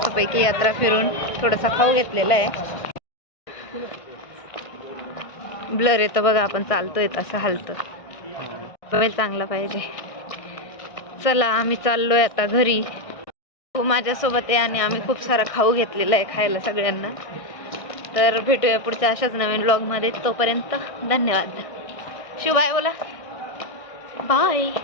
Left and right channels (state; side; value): late; right; 1.6 ms